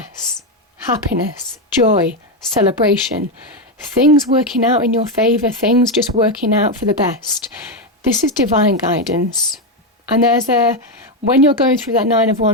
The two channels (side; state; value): both; normal; correlation 0.08